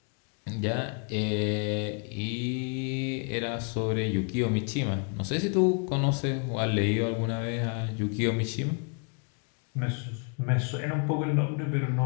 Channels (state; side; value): quieter; right; 38.8 dB